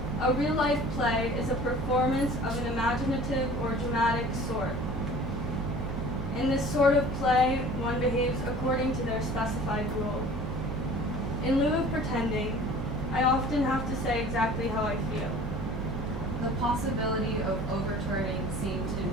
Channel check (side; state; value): right; noise; hum, 5 dB below the sound